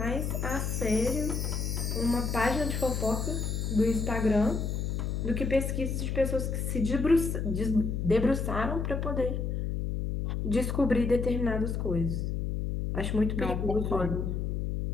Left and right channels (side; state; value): left; noise; hum, 1 dB below the sound